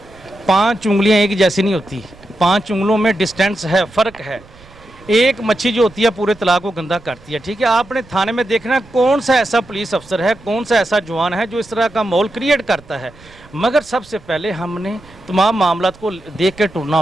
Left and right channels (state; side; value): noise; right; rumble, 24 dB below the sound